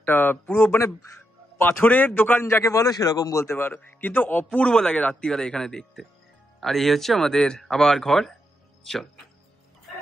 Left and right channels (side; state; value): both; normal; correlation 0.82